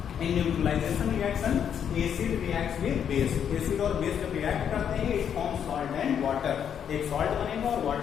In neutralization reaction acid reacts with base, acid और बेस जब रिएक्ट करते हैं it forms salt and water, एक सॉल्ट बनेगा और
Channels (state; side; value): quieter; right; 8.5 dB